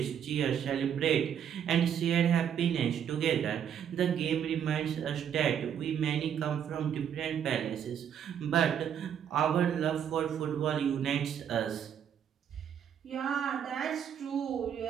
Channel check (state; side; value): quieter; left; 8.8 dB